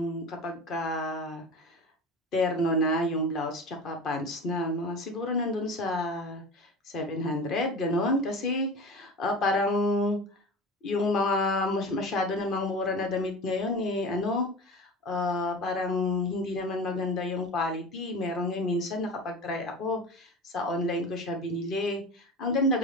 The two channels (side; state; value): both; normal; correlation 0.32